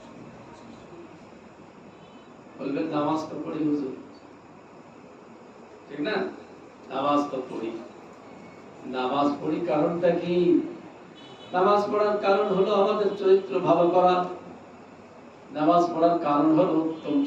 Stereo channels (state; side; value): identical; both; correlation 1.00